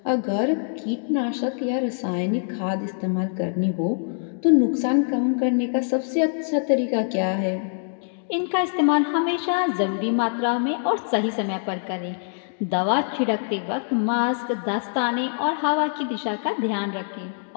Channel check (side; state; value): right; silent; digital silence